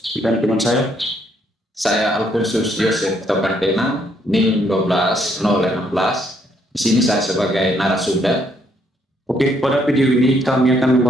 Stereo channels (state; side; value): normal; both; correlation 0.70